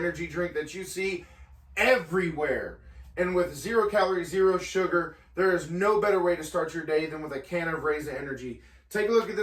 drink that you see everywhere. And with 0 calories, 0 sugar, there is no better way to start your day than with a can of Raze Energy. Take a look at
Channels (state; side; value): identical; both; correlation 1.00